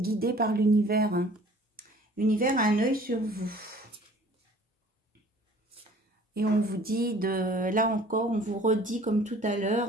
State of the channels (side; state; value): both; normal; correlation 0.51